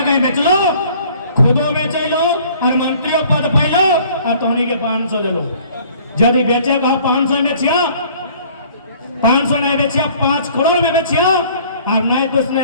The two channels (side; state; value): both; inverted; correlation -0.54